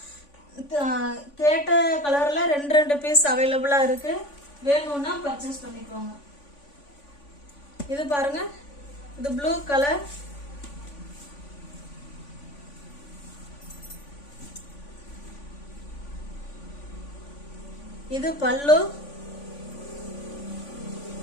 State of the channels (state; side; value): late; right; 3.5 ms